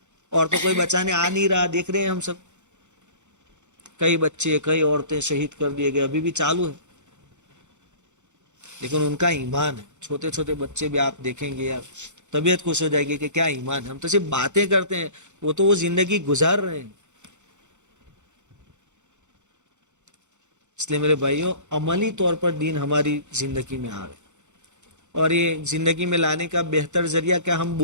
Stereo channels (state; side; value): late; left; 0.84 ms